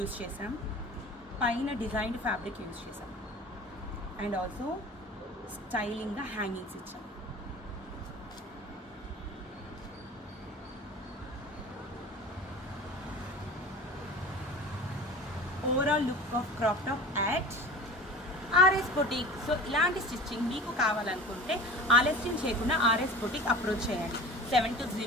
చేసాం, పైన డిజైన్డ్ ఫ్యాబ్రిక్ యూజ్ చేసాం అండ్ ఆల్సో స్టైలింగ్గా హ్యాంగింగ్స్ ఇచ్చాం. Overall look of crop top at RS boutique. So ఇలాంటి స్టిచ్చింగ్ మీకు కావాలనుకుంటే ఆలస్యం చేయకుండా ఆర్ఎస్ బొటిక్ అప్రోచ్ చేయండి.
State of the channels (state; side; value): normal; both; correlation 0.37